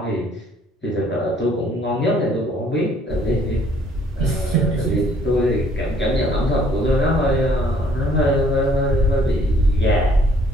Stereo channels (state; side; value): normal; both; correlation 0.61